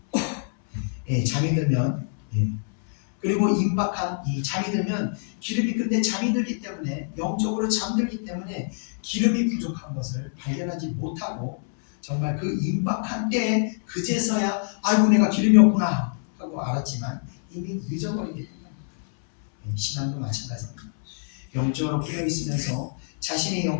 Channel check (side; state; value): right; silent; 61 dB below the other